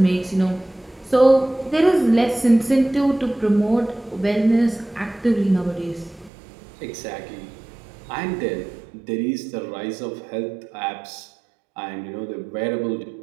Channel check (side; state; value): left; drops out; at 6.3 s